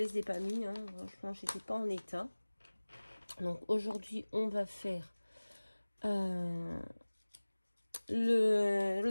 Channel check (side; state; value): both; inverted; correlation -1.00